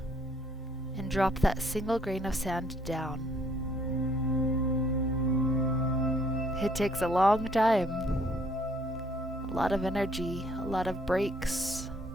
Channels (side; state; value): both; normal; correlation 0.64